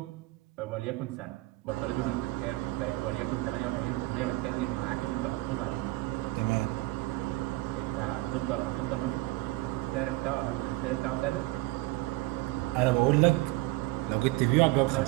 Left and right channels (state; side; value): quieter; left; 19.9 dB